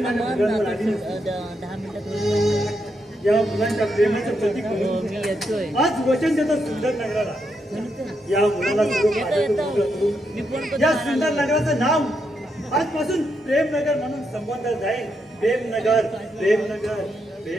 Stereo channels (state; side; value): normal; both; correlation 0.81